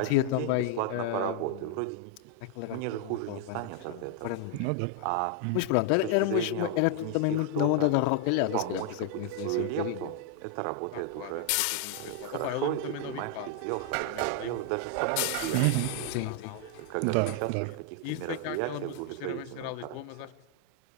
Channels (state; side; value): different; both; correlation 0.00